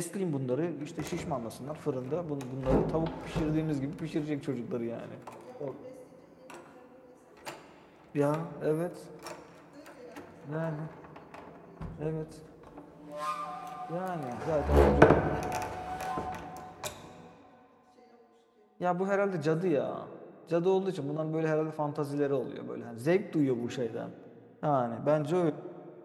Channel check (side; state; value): both; identical; correlation 1.00